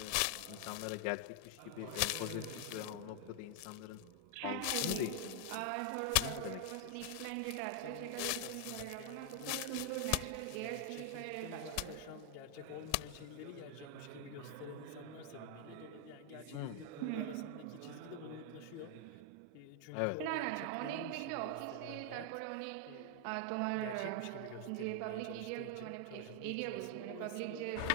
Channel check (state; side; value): different; both; correlation 0.00